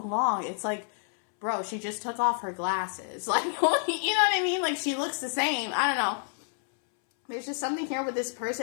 along. It's like, bro, she just took off her glasses. Like, you know what I mean? Like, she looks the same. I don't know. There's just something here with this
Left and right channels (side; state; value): right; silent; 59 dB below the other